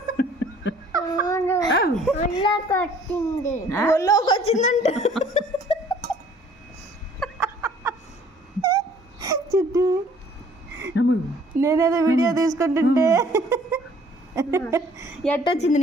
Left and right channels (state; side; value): normal; both; correlation 0.56